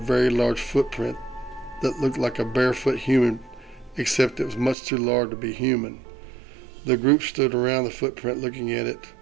large footprint that looked like a barefoot human, except it was much too large to be human. The group stood around the footprint looking at it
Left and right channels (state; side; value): drops out; left; at 4.8 s